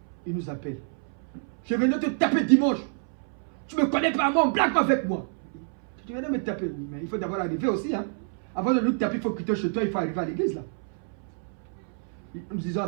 Il nous appelle. Je vais venir te taper dimanche. Tu ne me connais pas, moi, on blague pas avec moi. Tu viens de me taper. Mais il faut d'abord arriver aussi. Hein. Avant de nous taper, il faut quitter chez toi, il faut arriver à l'église là. Nous disons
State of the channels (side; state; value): left; silent; 59 dB below the other